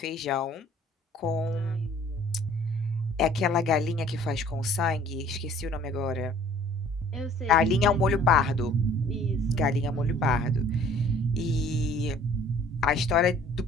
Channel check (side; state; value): both; normal; correlation 0.54